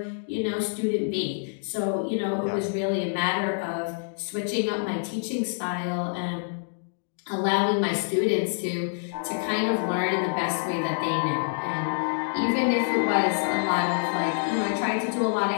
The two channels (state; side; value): silent; right; digital silence